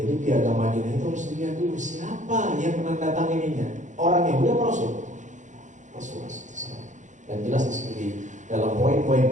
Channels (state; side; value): late; left; 0.35 ms